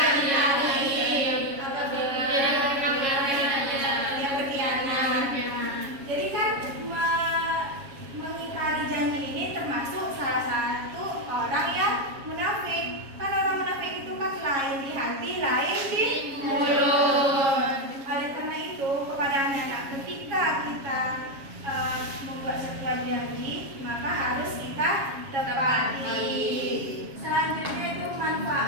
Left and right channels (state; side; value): late; left; 7.3 ms